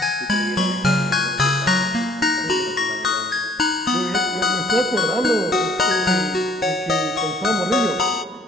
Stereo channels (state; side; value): normal; both; correlation 0.60